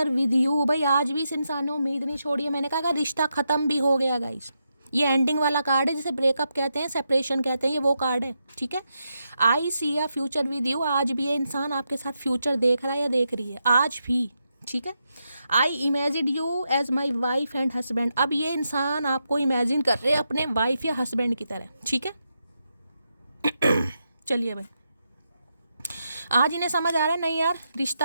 विद यू। भाई आज भी इस इंसान ने उम्मीद नहीं छोड़ी है, मैंने कहा अगर रिश्ता खत्म भी हो गया गाइस, ये एंडिंग वाला कार्ड है, जिसे ब्रेकअप कहते हैं, सेपरेशन कहते हैं, ये वो कार्ड है, ठीक है। आई सी अ फ्यूचर विद यू, आज भी ये इंसान आपके साथ फ्यूचर देख रहा है या देख रही है, आज भी, ठीक है। I imagine you as my wife and husband, अब ये इंसान आपको इमेजिन कर रहे हैं अपने वाइफ या हस्बैंड की तरह, ठीक है। चलिए भाई, आज इन्हें समझ आ रहा है नहीं यार,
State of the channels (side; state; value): both; inverted; correlation -0.84